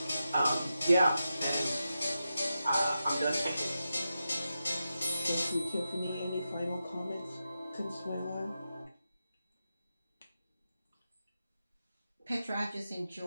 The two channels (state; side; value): inverted; both; correlation -0.90